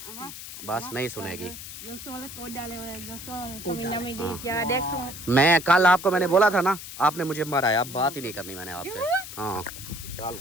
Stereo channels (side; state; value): left; noise; hiss, 11 dB below the sound